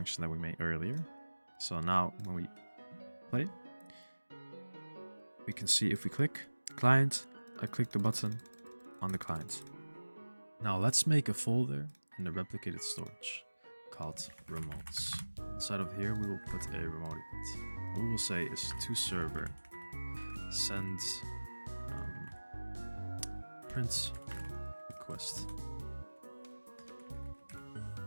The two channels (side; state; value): both; inverted; correlation -1.00